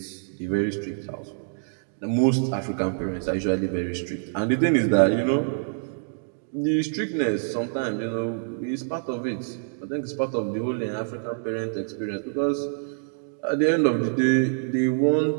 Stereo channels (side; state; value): left; silent; digital silence